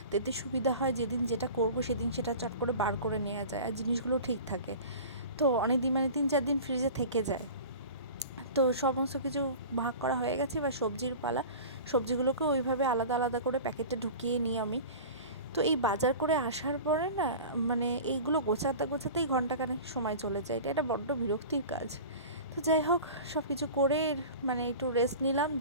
এতে সুবিধা হয়, যেদিন যেটা করব সেদিন সেটা চট করে বার করে নেওয়া যায়, আর জিনিসগুলো ঠিক থাকে। তো অনেক দিন, মানে 3-4 দিন ফ্রিজে থেকে যায়। তো সমস্ত কিছু ভাগ করা হয়ে গেছে, এবার সবজির পালা। সবজিগুলোকে ওইভাবে আলাদা আলাদা করে প্যাকেটে ঢুকিয়ে নিই আমি। তো এই বাজার করে আসার পরে না, মানে এইগুলো গোছাতে গোছাতেই ঘন্টাখানেক সময় চলে যায়। এটা বড্ড বিরক্তির কাজ। তো যাই হোক, সব কিছু করে মানে একটু রেস্ট নিলাম,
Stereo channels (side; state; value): both; inverted; correlation -0.37